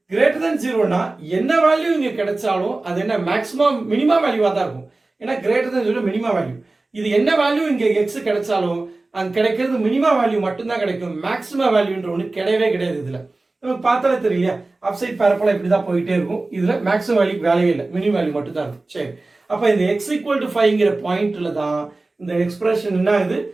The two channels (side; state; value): left; quieter; 3.2 dB